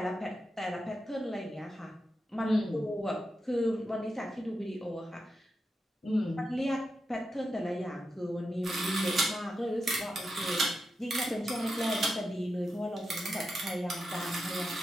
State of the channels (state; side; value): normal; both; correlation 0.88